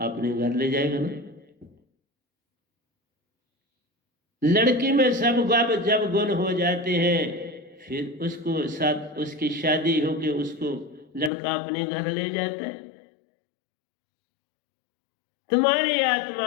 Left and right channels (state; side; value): drops out; right; at 11.3 s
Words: अपने घर ले जाएगा ना। लड़की में सब जब गुण हो जाते हैं, फिर उसको साथ उसकी शादी होके उसको लड़का अपने घर ले जाता है। तुम्हारी आत्मा